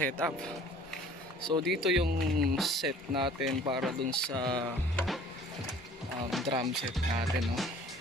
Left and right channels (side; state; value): both; normal; correlation 0.50